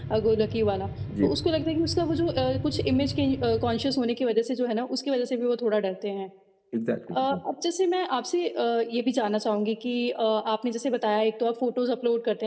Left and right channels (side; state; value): both; identical; correlation 1.00